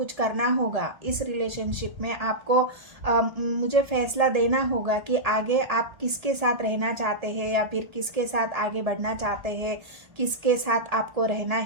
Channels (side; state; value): left; late; 1.8 ms